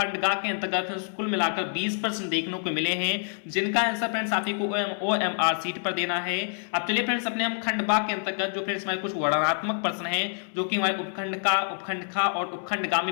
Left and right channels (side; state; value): right; silent; 60 dB below the other